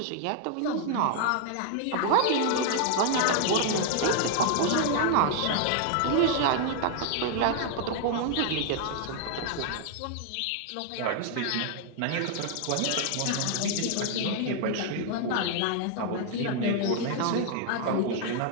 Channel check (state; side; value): different; both; correlation 0.00